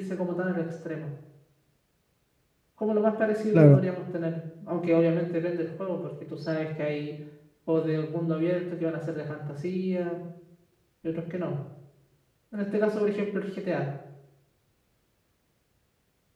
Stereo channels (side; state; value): both; identical; correlation 1.00